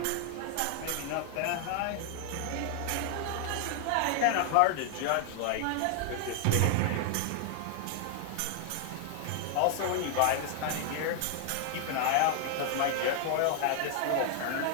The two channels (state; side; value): different; both; correlation 0.00